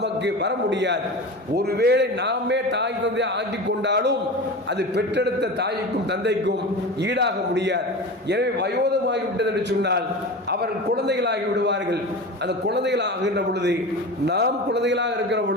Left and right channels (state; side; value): normal; both; correlation 0.30